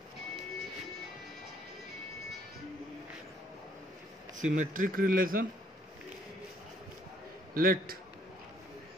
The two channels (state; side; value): normal; both; correlation 0.64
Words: Symmetric relation. Let